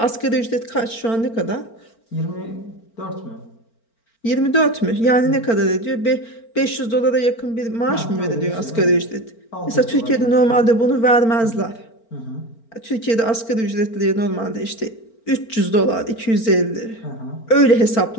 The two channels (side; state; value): right; late; 4.4 ms